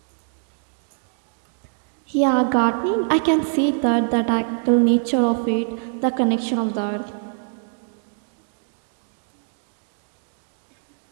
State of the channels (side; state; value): left; silent; digital silence